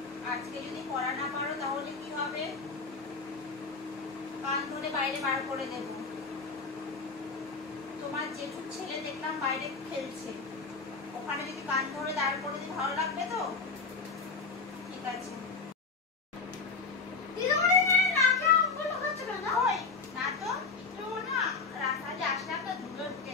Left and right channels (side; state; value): right; quieter; 4.5 dB